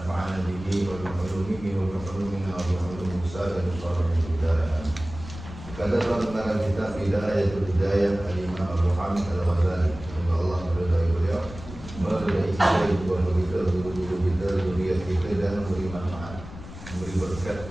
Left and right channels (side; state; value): left; noise; rumble, 13 dB below the sound